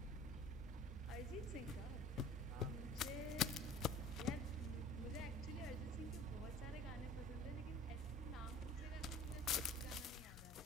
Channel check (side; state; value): both; normal; correlation 0.45